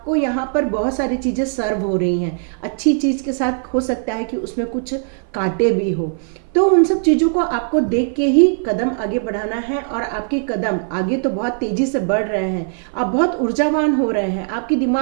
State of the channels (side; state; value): left; silent; 57 dB below the other